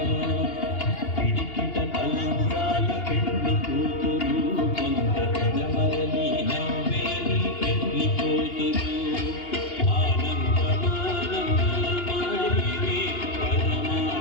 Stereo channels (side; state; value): right; late; 2.8 ms